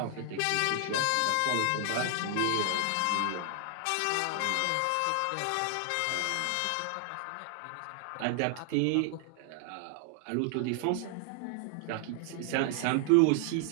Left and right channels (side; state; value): both; different; correlation 0.00